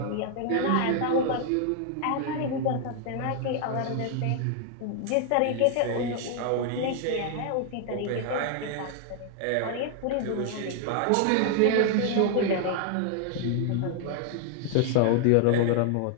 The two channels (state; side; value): different; both; correlation 0.00